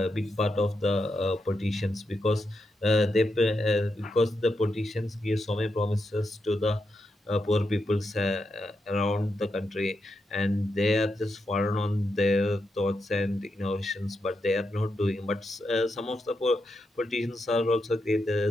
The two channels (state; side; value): normal; both; correlation 0.85